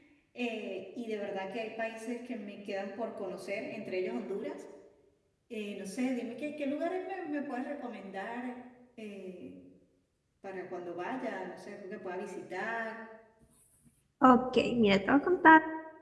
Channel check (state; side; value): identical; both; correlation 1.00